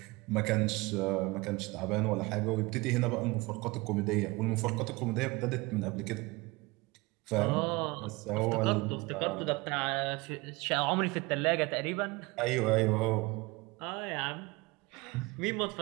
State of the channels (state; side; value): quieter; left; 23.6 dB